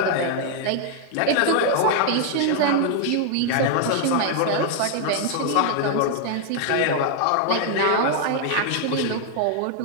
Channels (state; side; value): different; both; correlation 0.00